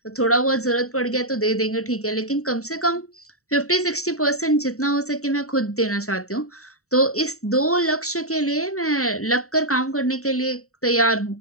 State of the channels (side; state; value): right; late; 0.64 ms